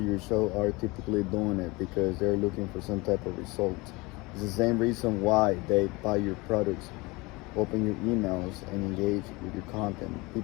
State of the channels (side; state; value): right; quieter; 24.0 dB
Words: your show are typically doing it because they're looking for some type of result. It's the same reason why they buy your products, open your emails, and engage with your content.